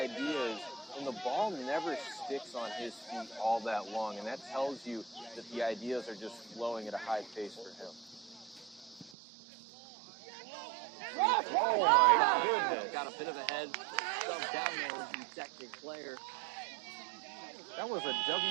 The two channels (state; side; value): drops out; left; at 9.2 s